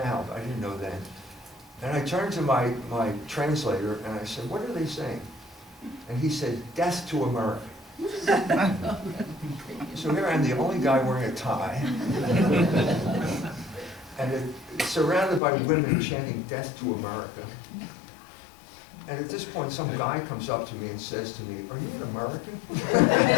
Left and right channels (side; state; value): right; drops out; at 15.4 s